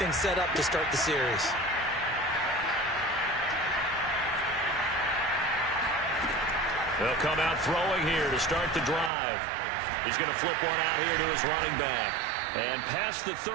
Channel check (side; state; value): left; drops out; at 9.1 s